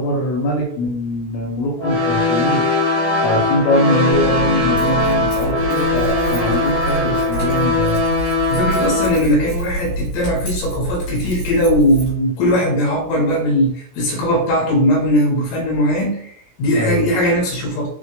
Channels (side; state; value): right; late; 17 ms